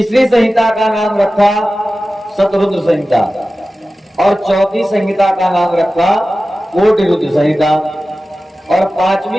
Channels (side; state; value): both; normal; correlation 0.95